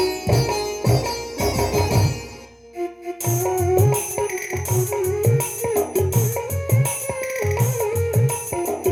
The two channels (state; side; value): identical; both; correlation 1.00